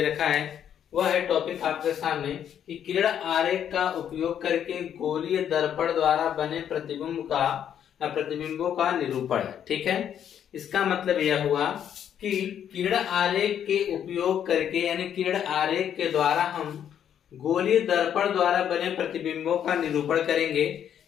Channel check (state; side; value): quieter; right; 9.3 dB